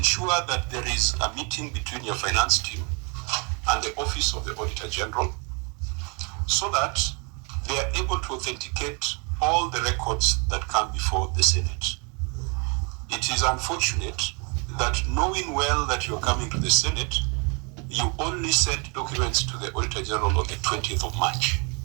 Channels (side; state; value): left; quieter; 33.3 dB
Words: that there is a meeting between your finance team and the Office of the Auditor General so that they are able to authenticate all the records that come before the Senate. It is unfortunate that knowing well that you're coming to the Senate, you only sent documents to the Auditor General on the 20th of March.